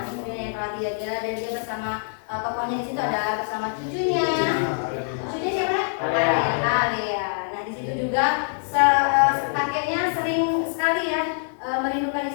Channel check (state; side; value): silent; right; digital silence